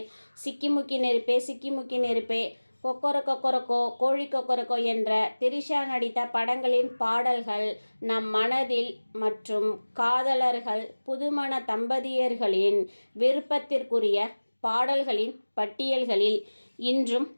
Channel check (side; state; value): both; inverted; correlation -1.00